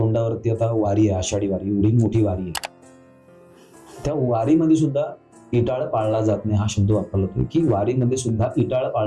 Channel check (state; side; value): identical; both; correlation 1.00